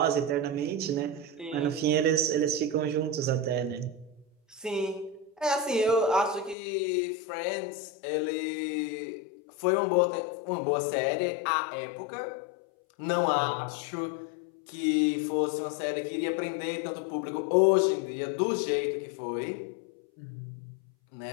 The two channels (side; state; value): right; drops out; at 6.6 s